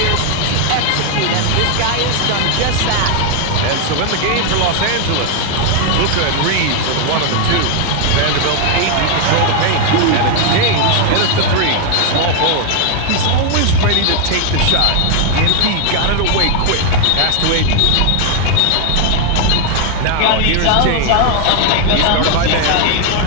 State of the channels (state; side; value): different; both; correlation 0.00